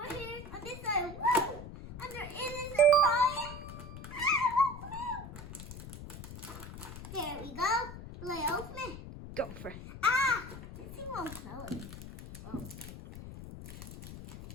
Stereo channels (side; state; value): left; noise; rumble, 11 dB below the sound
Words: here. On this side, woo! And there is a surprise. There we go. Will I open it? Go for it. Ah! This thing won't close. Oh.